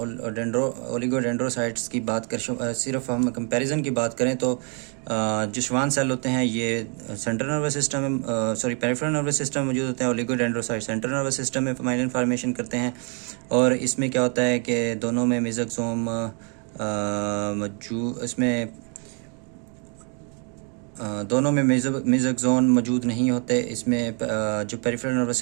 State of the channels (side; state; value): left; quieter; 38.0 dB